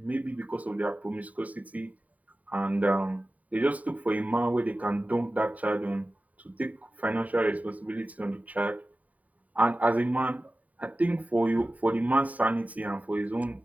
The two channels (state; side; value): late; left; 0.072 ms